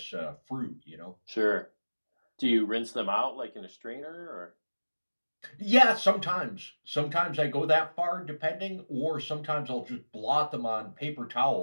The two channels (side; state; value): both; inverted; correlation -1.00